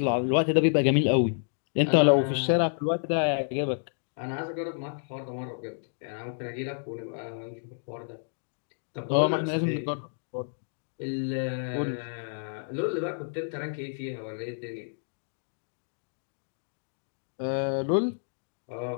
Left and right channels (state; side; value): silent; right; digital silence